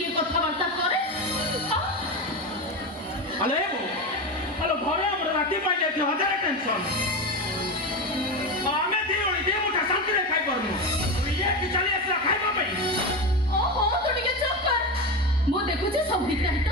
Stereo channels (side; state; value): both; normal; correlation 0.18